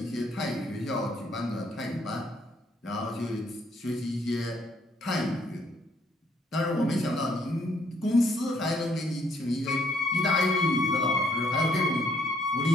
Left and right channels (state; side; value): normal; both; correlation 0.69